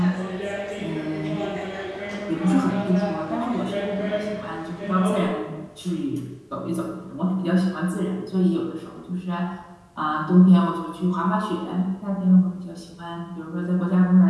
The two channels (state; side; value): identical; both; correlation 1.00